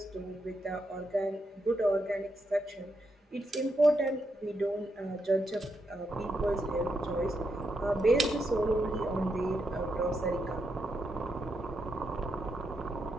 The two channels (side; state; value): both; normal; correlation 0.82